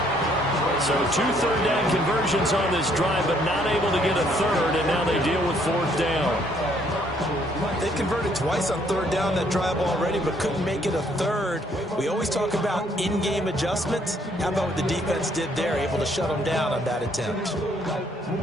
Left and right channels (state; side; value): normal; both; correlation 0.66